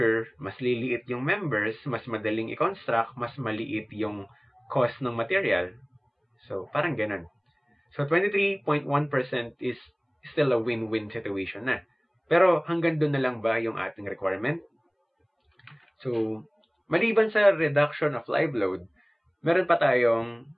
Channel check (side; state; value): both; identical; correlation 1.00